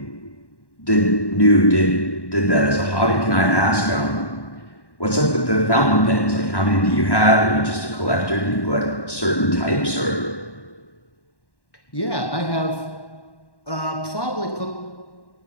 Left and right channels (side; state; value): right; late; 1.1 ms